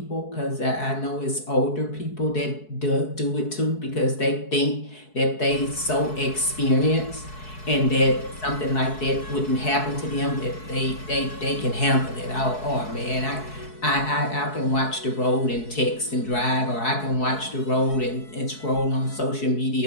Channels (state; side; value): late; right; 4.7 ms